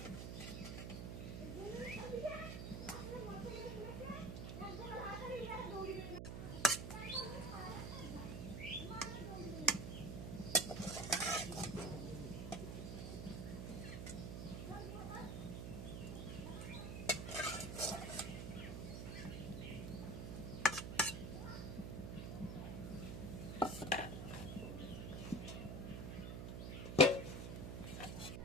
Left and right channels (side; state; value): right; noise; hum, 5 dB below the sound